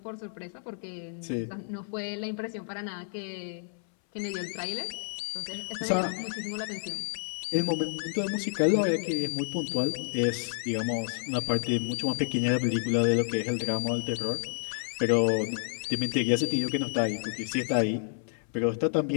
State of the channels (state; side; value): silent; right; 58 dB below the other